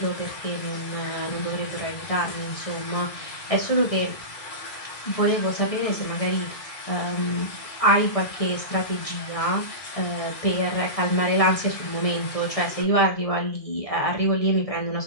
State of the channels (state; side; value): late; right; 1.6 ms